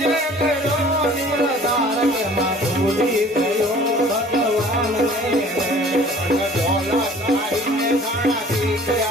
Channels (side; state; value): both; normal; correlation 0.49